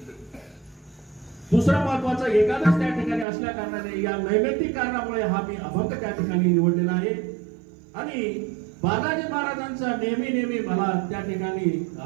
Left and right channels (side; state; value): left; drops out; at 3.2 s